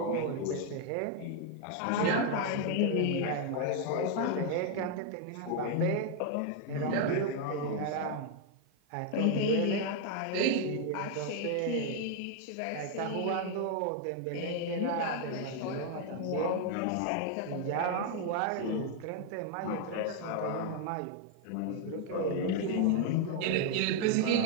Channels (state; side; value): different; both; correlation 0.00